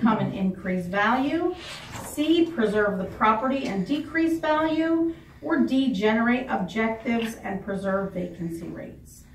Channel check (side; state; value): both; identical; correlation 1.00